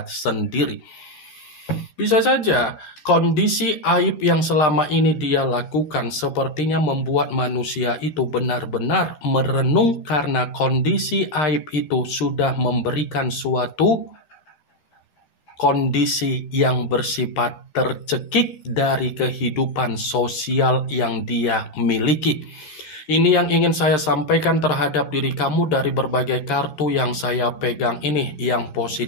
sendiri. Bisa saja kondisi aib yang selama ini dia lakukan sepertinya membuat manusia itu benar-benar merenung karena kondisi aib itu sudah memberikan suatu kondisi yang bersifat tercekik dari kehidupan sosial yang dia miliki. Ini yang ingin saya sampaikan terhadap diri kamu dari berbagai kartu yang saya pegang ini. Yang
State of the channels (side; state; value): right; late; 13 ms